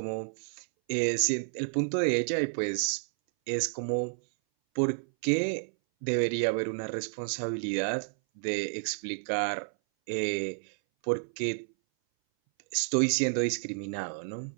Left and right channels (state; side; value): silent; left; 57 dB below the other